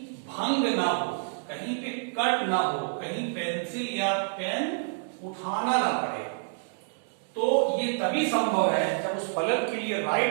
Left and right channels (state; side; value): silent; left; 59 dB below the other